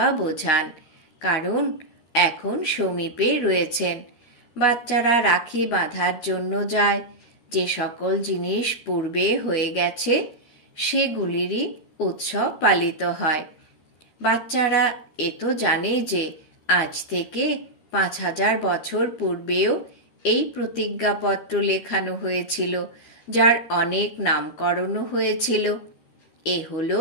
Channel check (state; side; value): late; right; 13 ms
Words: বোঝান, কারণ এখন সমীপে রয়েছেন। বাচ্চারা রাখি বাঁধার জন্য যায়। যে সকল জিনিস পূর্বে হয়ে গেছে সেগুলিরই উৎসব পালিত হয়। বাচ্চারা এ তো জানে যে আজ থেকে 5000 বছর পূর্বেও এই প্রতিজ্ঞাপত্র লেখানো হয়েছিল, যার অনেক নামকরণও হয়েছিল। এ হলো